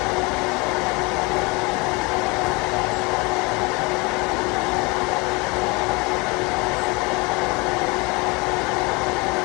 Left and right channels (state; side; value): quieter; right; 27.0 dB